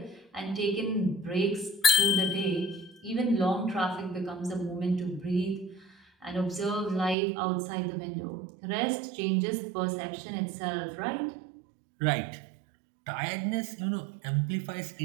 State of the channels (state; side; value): drops out; left; at 7.2 s